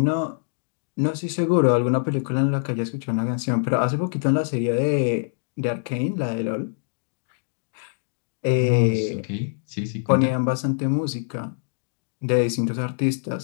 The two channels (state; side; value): silent; right; digital silence